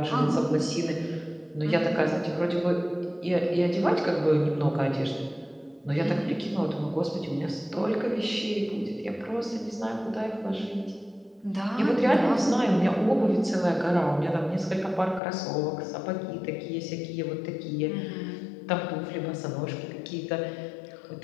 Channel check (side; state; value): right; drops out; at 15.2 s